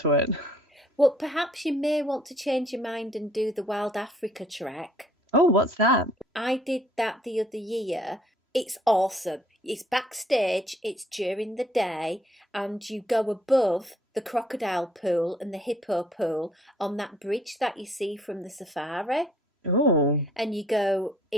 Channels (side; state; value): both; normal; correlation 0.62